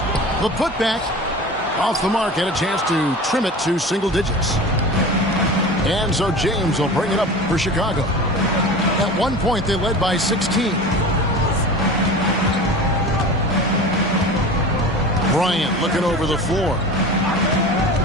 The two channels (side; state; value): both; normal; correlation 0.35